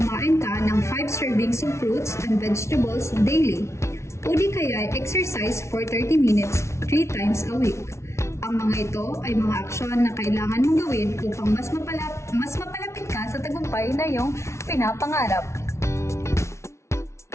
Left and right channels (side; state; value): right; late; 0.13 ms